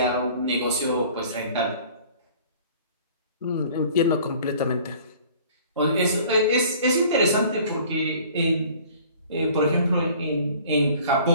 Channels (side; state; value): both; inverted; correlation -0.50